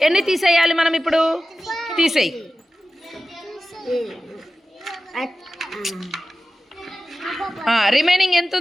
ఎన్ని తీసేయాలి మనం ఇప్పుడు? తీసేయి. రిమైనింగ్ ఎంత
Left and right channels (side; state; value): both; normal; correlation 0.94